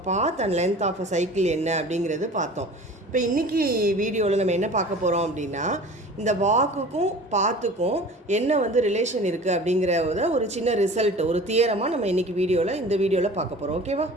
path and length of a cycle என்ன அப்படிங்கிறது பார்த்தோம். இப்போ இன்றைக்கி வீடியோவில் நம்ம என்ன பார்க்க போகிறோம் அப்படின்னா இந்த வாக்குக்கும் பாத்துக்கும் என்ன ரிலேஷன் இருக்குது அப்படிங்கிறத ஒரு சின்ன ரிசல்ட், ஒரு தியரமாக நம்ம இன்றைக்கி இந்த வீடியோவில் பார்க்க போகிறோம். ஓகேவா?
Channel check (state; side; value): normal; both; correlation 0.41